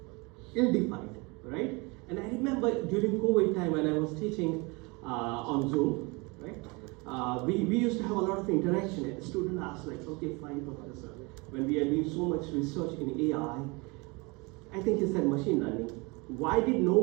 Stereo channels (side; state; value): left; quieter; 27.6 dB